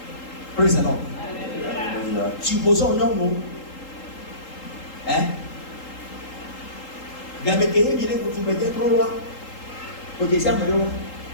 Praise the Lord. Supposons non mot. Hein? Gameke, il est pour tout mettre trop loin. Au deuxième,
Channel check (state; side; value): late; right; 3.8 ms